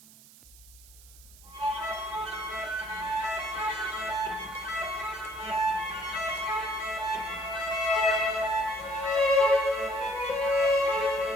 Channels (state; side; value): noise; right; hiss, 22 dB below the sound